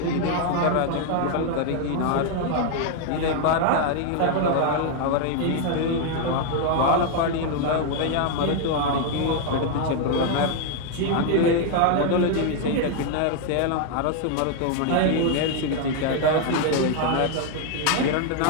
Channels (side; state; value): both; different; correlation 0.00